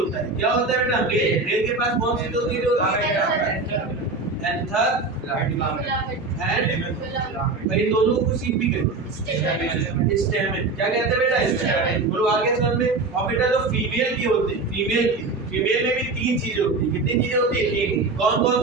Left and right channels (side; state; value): left; quieter; 3.7 dB